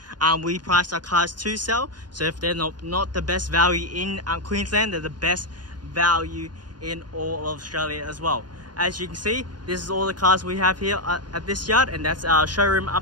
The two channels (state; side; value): late; left; 0.70 ms